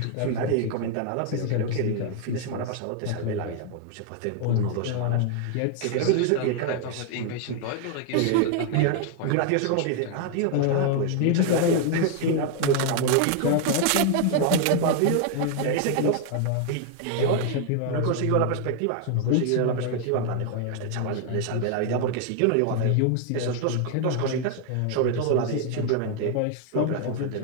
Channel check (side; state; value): both; different; correlation 0.00